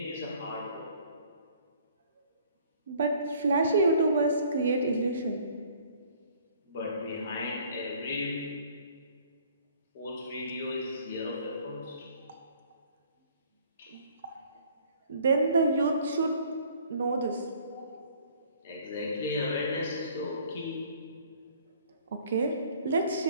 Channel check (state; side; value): inverted; both; correlation -0.56